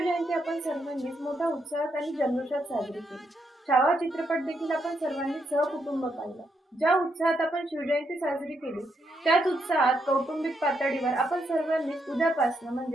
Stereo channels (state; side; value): normal; both; correlation 0.79